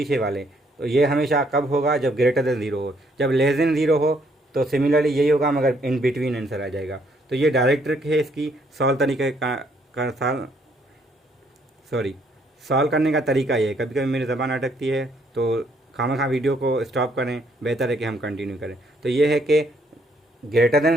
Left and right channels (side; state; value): both; normal; correlation 0.69